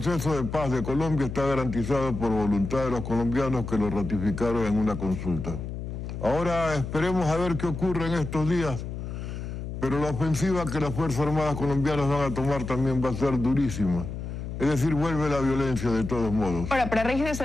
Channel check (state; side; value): noise; left; hum, 7 dB below the sound